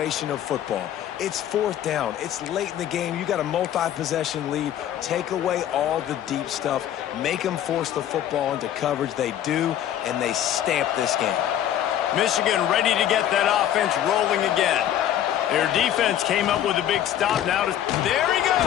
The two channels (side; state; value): right; quieter; 11.1 dB